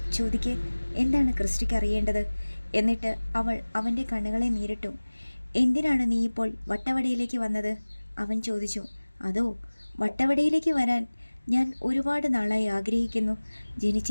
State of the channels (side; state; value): both; inverted; correlation -1.00